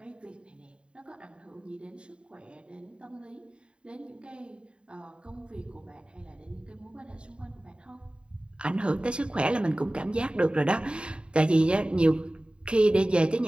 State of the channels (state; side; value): late; left; 0.054 ms